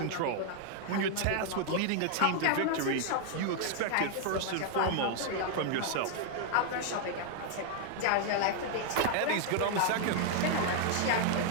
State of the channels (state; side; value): different; both; correlation 0.00